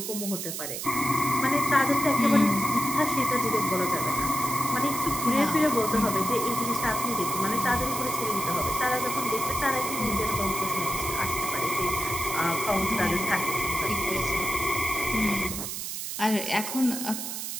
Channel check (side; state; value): right; noise; hiss, 5 dB below the sound